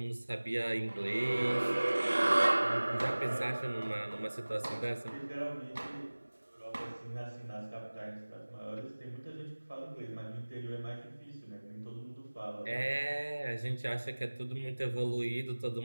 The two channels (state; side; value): inverted; both; correlation -1.00